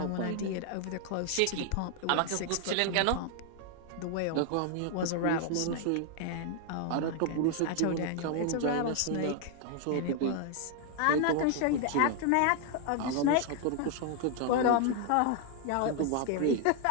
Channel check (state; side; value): different; both; correlation 0.00